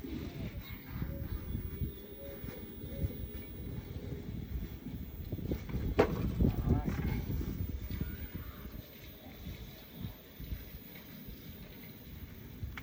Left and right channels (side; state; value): both; identical; correlation 1.00